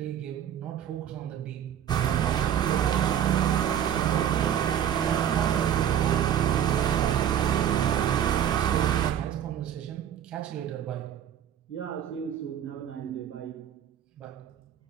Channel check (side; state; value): left; quieter; 9.8 dB